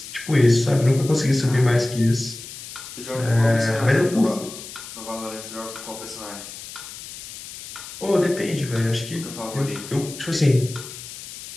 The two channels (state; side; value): noise; left; hiss, 13 dB below the sound